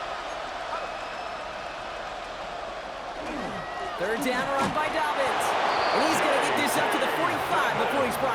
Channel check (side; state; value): both; identical; correlation 1.00